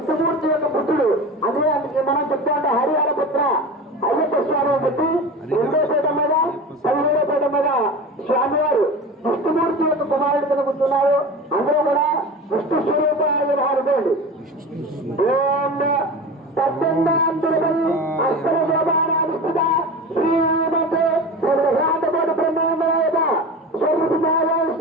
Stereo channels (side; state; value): both; normal; correlation 0.31